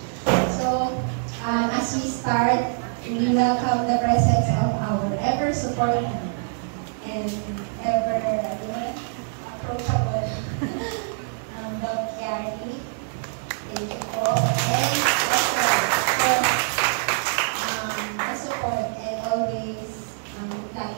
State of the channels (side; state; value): left; silent; 62 dB below the other